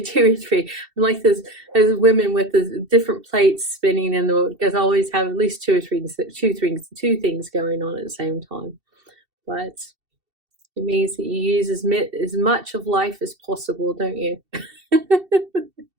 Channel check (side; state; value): left; late; 2.7 ms